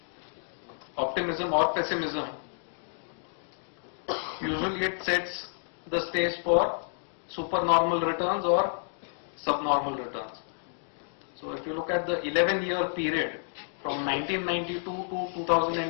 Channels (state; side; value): silent; right; digital silence